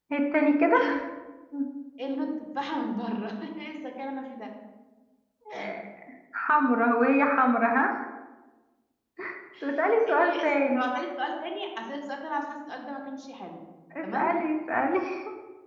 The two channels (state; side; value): identical; both; correlation 1.00